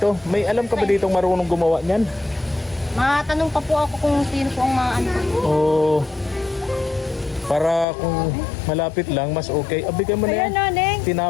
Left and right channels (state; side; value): drops out; right; at 7.9 s